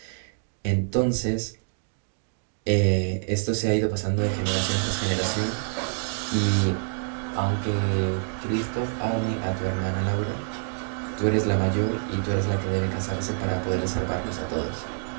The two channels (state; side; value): silent; left; digital silence